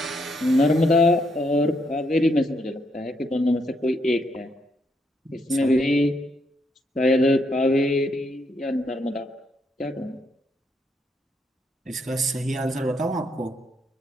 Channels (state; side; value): normal; both; correlation 0.76